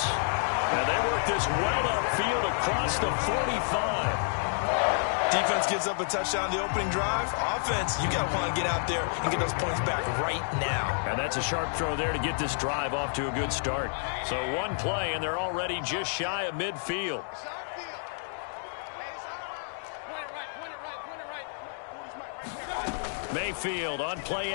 And they work this well upfield across the 45. Defense gives up a touchdown the opening drive. Offense, you got to want to get out there and get those points back right now. And that's a sharp throw there to get this drive off to a good start. So one play, and they're already just shy of midfield. Mayfield on play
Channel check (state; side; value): silent; right; digital silence